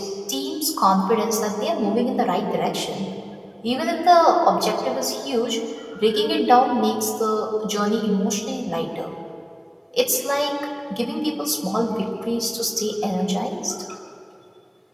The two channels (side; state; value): both; identical; correlation 1.00